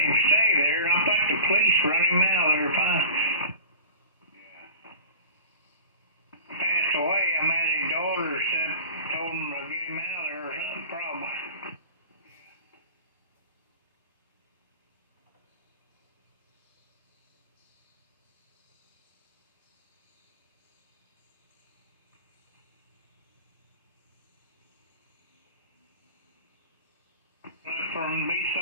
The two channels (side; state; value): both; inverted; correlation -0.39